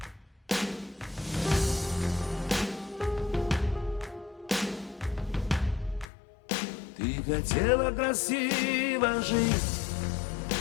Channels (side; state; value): right; drops out; at 6.1 s